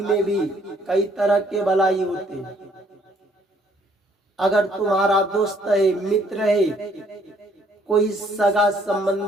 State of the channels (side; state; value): both; normal; correlation 0.65